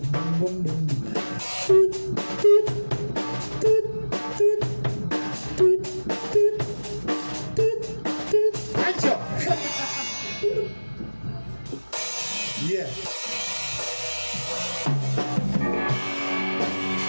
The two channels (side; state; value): both; inverted; correlation -1.00